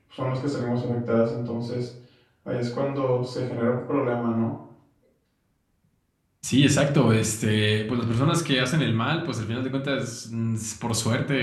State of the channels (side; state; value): both; identical; correlation 1.00